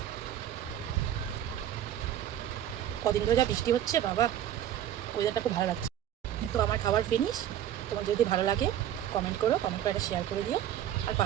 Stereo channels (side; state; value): left; quieter; 11.2 dB